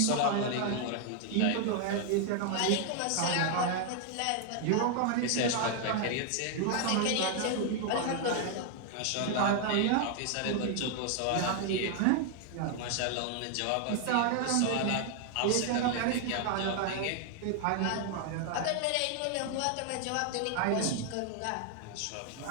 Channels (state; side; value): different; both; correlation 0.00